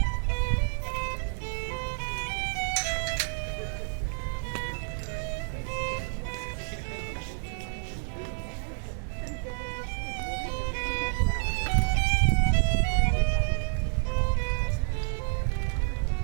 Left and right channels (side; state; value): left; silent; 58 dB below the other